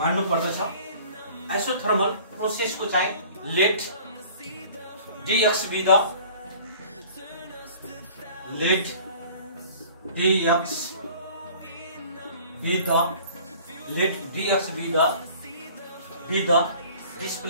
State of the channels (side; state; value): both; inverted; correlation -0.48